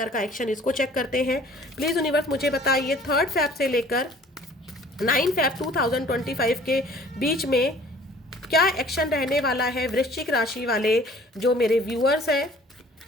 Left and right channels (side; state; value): both; normal; correlation 0.52